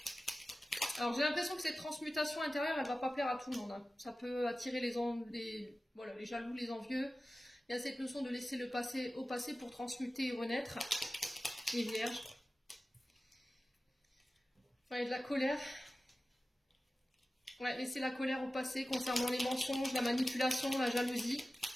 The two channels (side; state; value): both; normal; correlation 0.96